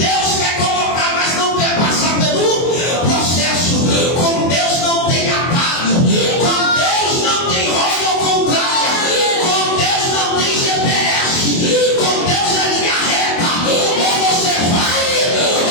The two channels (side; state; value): right; late; 24 ms